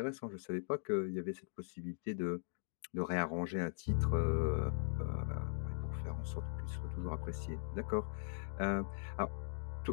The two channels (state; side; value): silent; right; digital silence